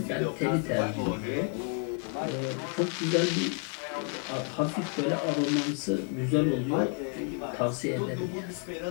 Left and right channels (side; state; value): right; quieter; 40.0 dB